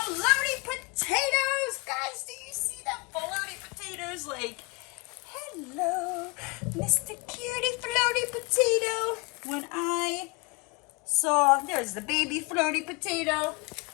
potatoes! Guys, do you see the floaty potatoes? Like, hello, Mr. Cutie Floaty Potato. When I saw, there's the baby floaty potato.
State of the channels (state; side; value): quieter; right; 28.7 dB